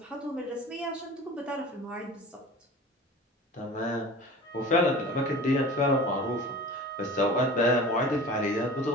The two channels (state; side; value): normal; both; correlation 0.38